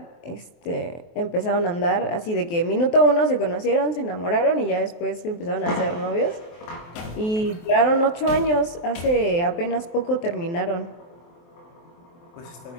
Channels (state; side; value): late; right; 23 ms